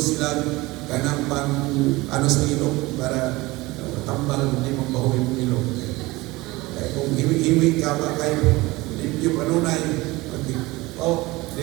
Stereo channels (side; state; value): left; quieter; 21.0 dB